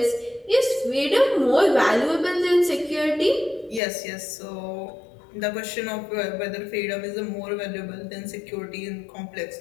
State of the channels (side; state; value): right; drops out; at 3.8 s